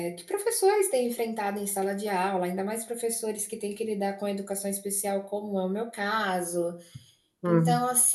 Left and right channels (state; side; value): identical; both; correlation 1.00